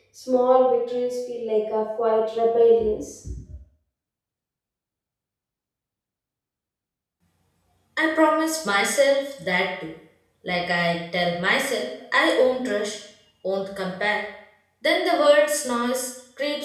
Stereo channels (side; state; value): both; identical; correlation 1.00